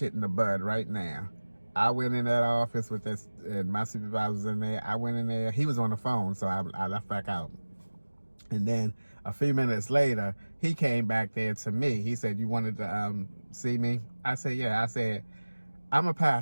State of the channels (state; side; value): inverted; both; correlation -1.00